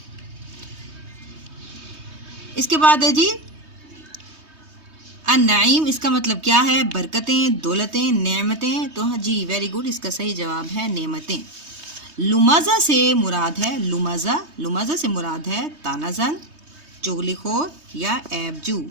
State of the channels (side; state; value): left; late; 3.2 ms